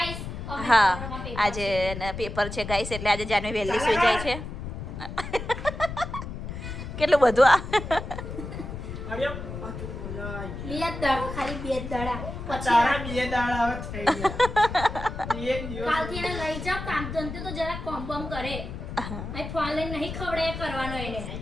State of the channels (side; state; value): left; noise; rumble, 7 dB below the sound